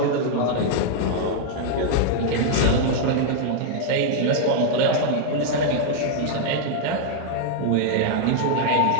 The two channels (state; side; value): different; both; correlation 0.00